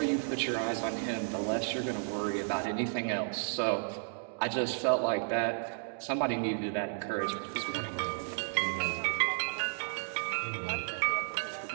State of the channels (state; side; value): silent; left; digital silence